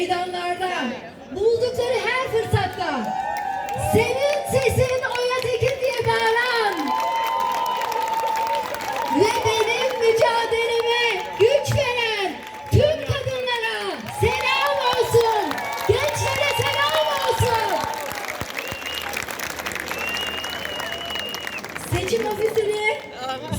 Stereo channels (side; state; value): both; identical; correlation 1.00